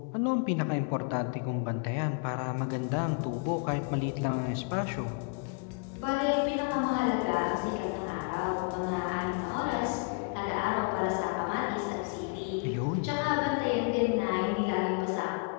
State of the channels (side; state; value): right; quieter; 36.6 dB